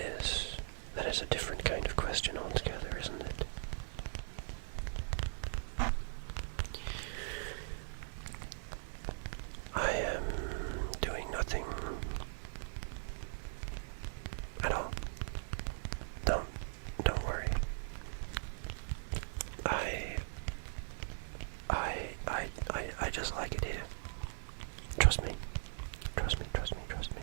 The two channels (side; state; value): left; silent; 51 dB below the other